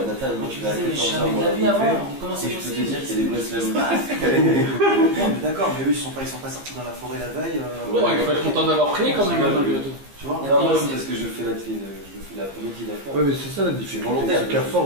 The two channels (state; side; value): late; left; 15 ms